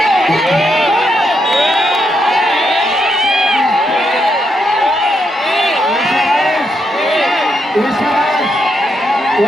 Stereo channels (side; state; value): both; normal; correlation 0.80